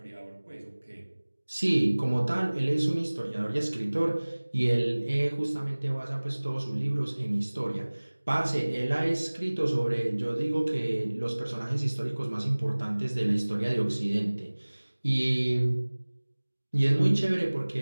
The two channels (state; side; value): inverted; both; correlation -1.00